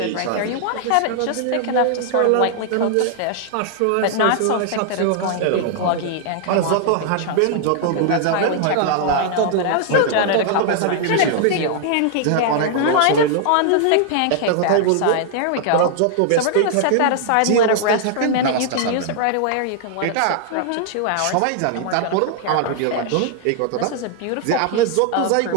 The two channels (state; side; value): different; both; correlation 0.00